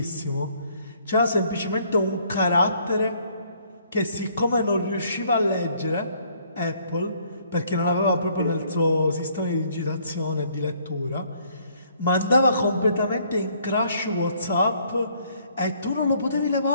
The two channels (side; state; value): both; inverted; correlation -0.64